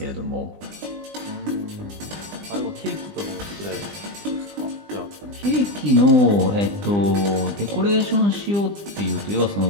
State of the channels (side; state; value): left; late; 20 ms